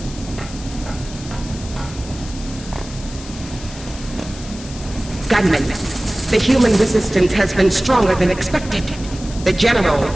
Gunman, the human resistance has been stronger than expected. The General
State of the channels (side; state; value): left; noise; hiss, 15 dB below the sound